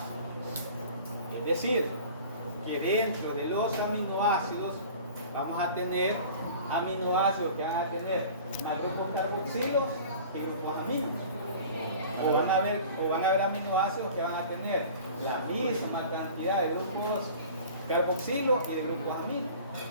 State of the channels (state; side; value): inverted; both; correlation -0.43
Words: Es decir, que dentro de los aminoácidos vamos a tener aminoácidos que van a tener grupos carboxilos y grupos aminos. O van a haber aminoácidos que van a tener la misma cantidad de grupos carboxilos y de grupos aminos.